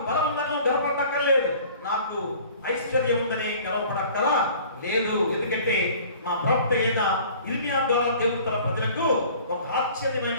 బలం ఉందని గర్వపడక్కర్లేదు, నాకు ఐశ్వర్యం ఉందని గర్వపడక్కల లేదు. ఎందుకంటే మా ప్రవక్త అయిన ఇర్మియా ద్వారా దేవుడు తన ప్రజలకు ఒక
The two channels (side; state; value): both; inverted; correlation -0.48